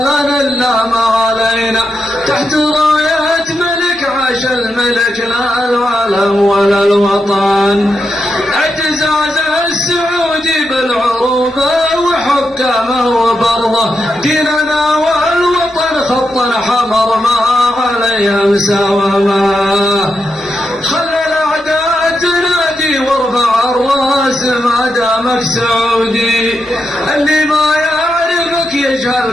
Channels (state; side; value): normal; both; correlation 0.85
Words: لنا الا ما علينا تحت راية ملك عاش الملك لا العالم ولا الوطن اعتزاز السعودي بالعروبة وحكامه وبرضه ديننا والوطن خطا حمر ما عليه مساومه خلى الاعداء تنادي وارفع الراس ما دامك سعودي اللي ما يعرفك